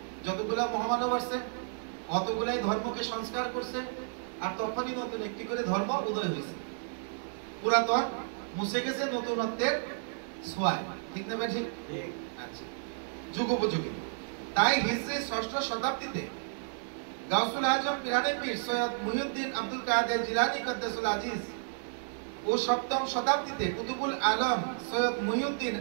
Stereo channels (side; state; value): left; silent; digital silence